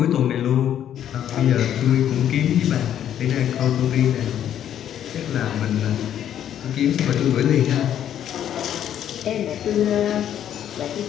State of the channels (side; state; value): right; quieter; 10.3 dB